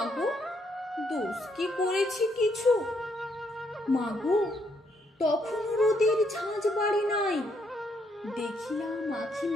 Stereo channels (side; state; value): both; normal; correlation 0.73